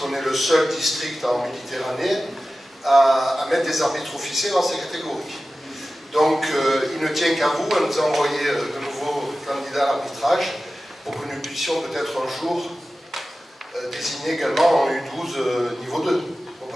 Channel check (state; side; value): normal; both; correlation 0.95